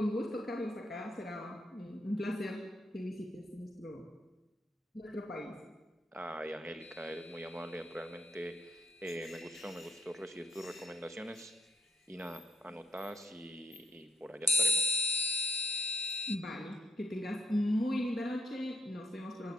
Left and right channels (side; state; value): both; normal; correlation 0.79